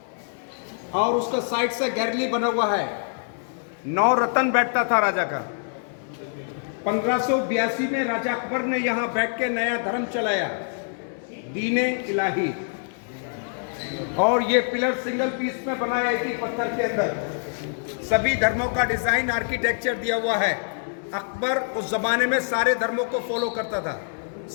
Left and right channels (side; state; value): right; silent; 61 dB below the other